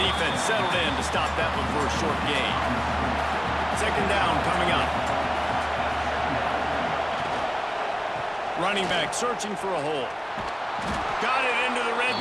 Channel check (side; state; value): both; identical; correlation 1.00